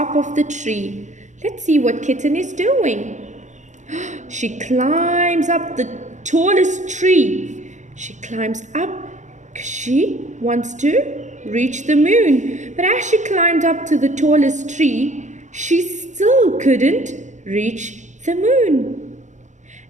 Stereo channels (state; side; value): late; left; 0.35 ms